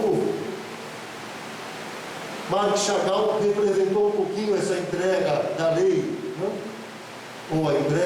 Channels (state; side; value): identical; both; correlation 1.00